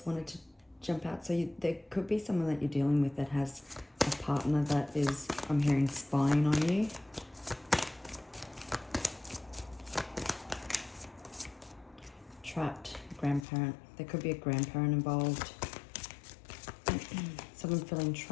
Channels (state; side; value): drops out; right; at 13.4 s